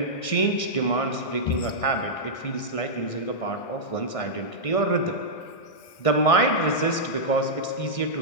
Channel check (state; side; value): late; right; 1.6 ms